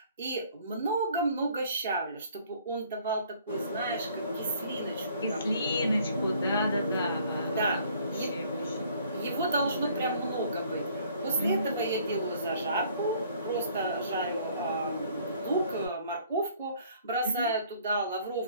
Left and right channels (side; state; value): both; inverted; correlation -0.59